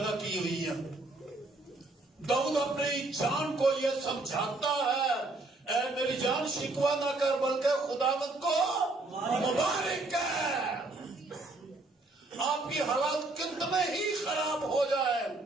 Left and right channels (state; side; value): quieter; left; 3.1 dB